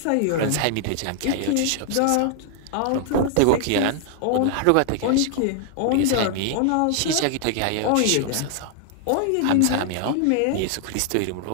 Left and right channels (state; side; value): different; both; correlation 0.00